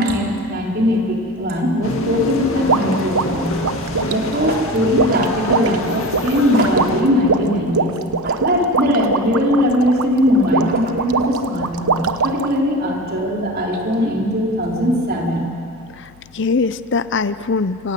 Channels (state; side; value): noise; left; hum, 28 dB below the sound